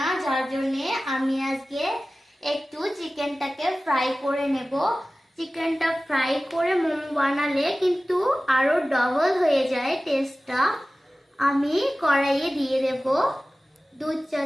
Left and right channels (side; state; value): both; normal; correlation 0.97